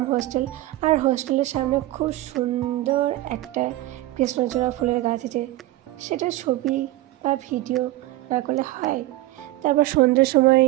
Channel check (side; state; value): left; quieter; 16.9 dB